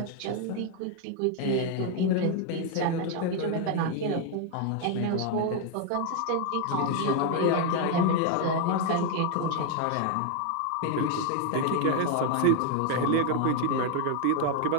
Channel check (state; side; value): different; both; correlation 0.00